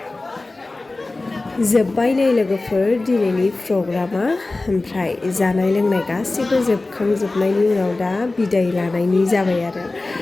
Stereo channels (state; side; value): quieter; right; 3.2 dB